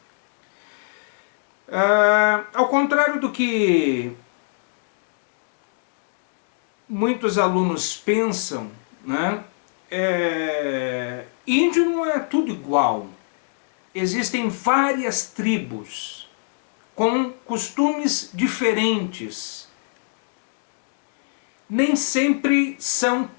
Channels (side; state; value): right; silent; digital silence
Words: Ao contrário do que muitos alunos pensam, né? Índio não é tudo igual. Existem várias tribos com costumes diferentes. Nem sempre são